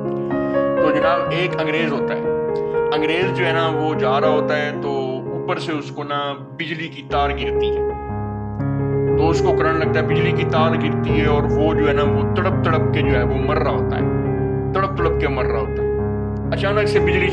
तो जनाब, एक अंग्रेज होता है। अंग्रेज जो है ना, वो जा रहा होता है तो ऊपर से उसको ना बिजली की तार गिरती है। तो उसको करंट लगता है, बिजली की तार गिरती है और वो जो है ना, वो तड़प तड़प के जो है वो मर रहा होता है, तड़प तड़प के मर रहा होता है। अचानक से बिजली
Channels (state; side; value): identical; both; correlation 1.00